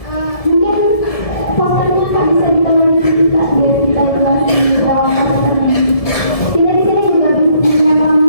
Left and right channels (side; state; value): right; late; 1.7 ms